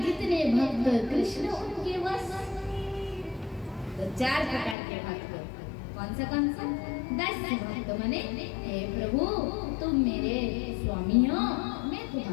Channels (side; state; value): right; drops out; at 4.8 s